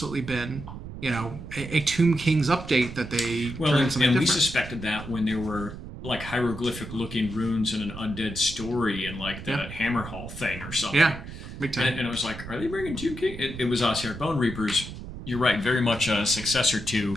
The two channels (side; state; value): right; noise; rumble, 11 dB below the sound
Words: been a Tomb Kings update that they turned into something different. We suspected that when there were like hieroglyphic looking runes in an undead story and like that Hammer Hall thing or something. Yeah, big time. And I was like, are they bringing Tomb King? It was Ossir Bone Reapers. You're right, very much a successor to.